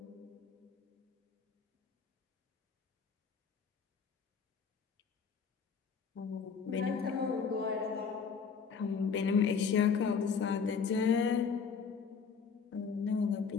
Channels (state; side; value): quieter; right; 5.9 dB